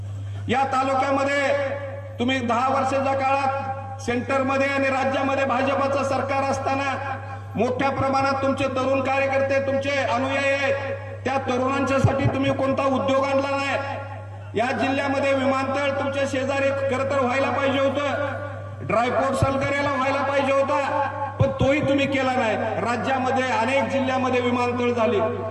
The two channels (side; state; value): both; identical; correlation 1.00